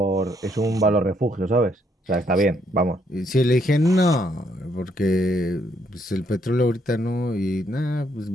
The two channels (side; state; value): both; normal; correlation 0.72